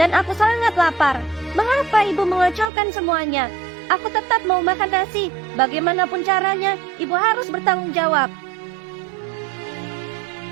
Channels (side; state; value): left; drops out; at 2.7 s